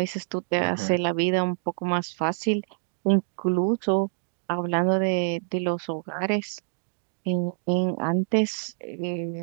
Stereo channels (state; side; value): silent; left; digital silence